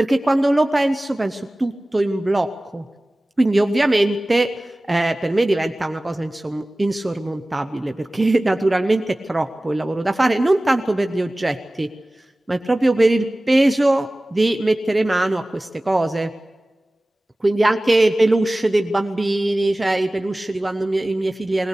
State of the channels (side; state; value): both; normal; correlation 0.98